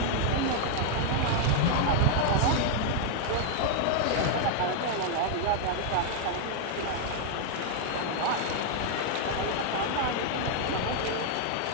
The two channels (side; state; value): both; different; correlation 0.00